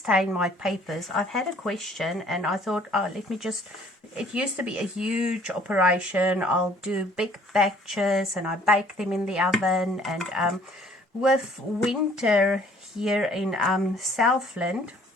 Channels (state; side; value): normal; both; correlation 0.57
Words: my papers. I've had a question, and I thought, oh, let me just, it used to be a huge operation. I'll do big batches and I bake them in the oven, and with winter here in Southland,